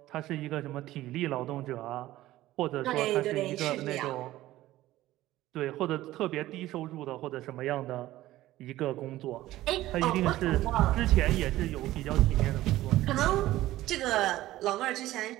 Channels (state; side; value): quieter; left; 15.7 dB